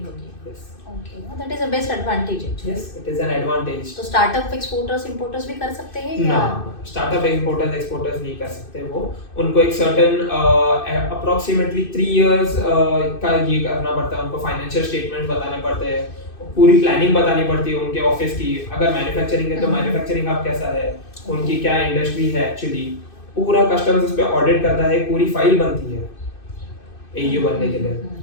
Yes. Okay, that is the best advantage actually. Yes, it is an advantage. तो स्टार्टअप एक्सपोर्टर्स इंपोर्टर्स भी कर सकते हैं या? स्टार्टअप इंपोर्टर्स एक्सपोर्टर्स नहीं कर सकते। वो उनको एक सर्टेन अप्रोक्सीमेटली 3 इयर्स का ये करना पड़ता है, उनको फाइनेंशियल स्टेटमेंट बताने पड़ते हैं, पूरी प्लानिंग बतानी पड़ती है उनके ऑफिस की। अगर मैन्युफैक्चरिंग है तो मैन्युफैक्चरिंग हब कैसा है, उनकी क्या इंडस्ट्री है एक्चुअली, पूरा कस्टम्स उस पे ऑडिट करता है, पूरी फाइल बनती है AU बनने के लिए.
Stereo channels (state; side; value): late; right; 2.6 ms